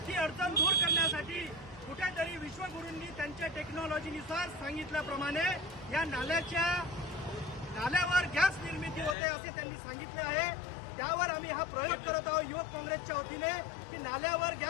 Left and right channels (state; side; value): drops out; right; at 9.2 s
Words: ती अडचण दूर करण्यासाठी कुठेतरी विश्वगुरूंनी त्यांच्या टेक्नॉलॉजीनुसार सांगितल्याप्रमाणे या नाल्यावर गॅस निर्मिती होते असे त्यांनी सांगितले आहे। त्यावर आम्ही हा प्रयोग करत आहोत युवक काँग्रेसच्या वतीने की नाल्यावर